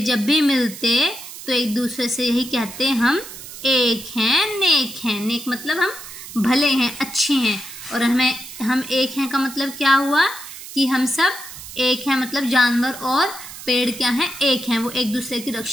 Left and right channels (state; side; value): noise; right; hiss, 13 dB below the sound